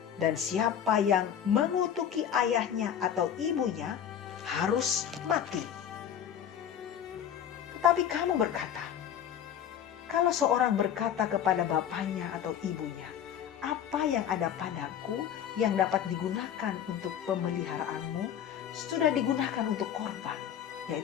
dan siapa yang mengutuki ayahnya atau ibunya harus mati. Tetapi kamu berkata, kalau seorang berkata kepada bapaknya atau ibunya, apa yang ada padaku yang dapat digunakan untuk pemeliharaanmu, sudah digunakan untuk korban,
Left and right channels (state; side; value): quieter; right; 9.3 dB